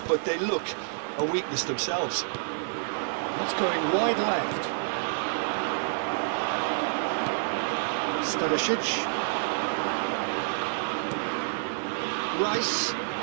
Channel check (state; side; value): silent; left; 59 dB below the other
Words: but they look a weakness themselves. That's going wide left. Stanisic. Rice.